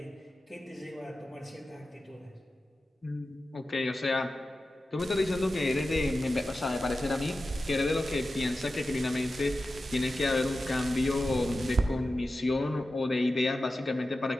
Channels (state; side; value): normal; both; correlation 0.93